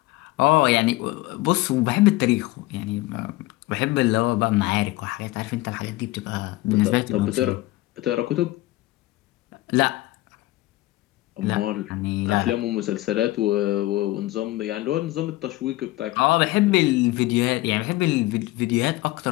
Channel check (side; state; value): right; quieter; 18.6 dB